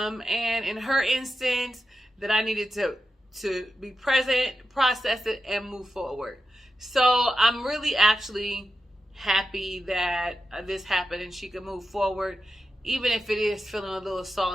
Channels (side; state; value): both; normal; correlation 0.89